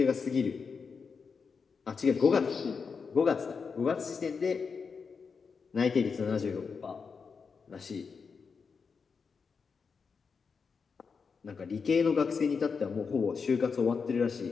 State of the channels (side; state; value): right; quieter; 5.5 dB